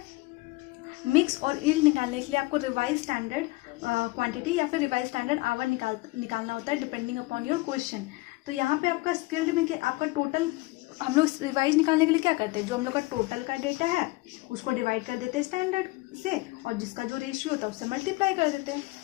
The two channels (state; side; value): quieter; right; 22.5 dB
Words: मिक्स और यील्ड निकालने के लिए आपको रिवाइज स्टैंडर्ड क्वांटिटी या फिर रिवाइज स्टैंडर्ड आवर निकालना होता है डिपेंडिंग अपॉन योर क्वेश्चन। तो यहाँ पे आपका स्किल्ड में आपका टोटल, हम लोग रिवाइज निकालने के लिए क्या करते हैं, जो हम लोग का टोटल का डेटा है उसको डिवाइड कर देते हैं स्टैंडर्ड से, और जिसका जो रेशियो होता है उससे मल्टीप्लाई कर देते हैं।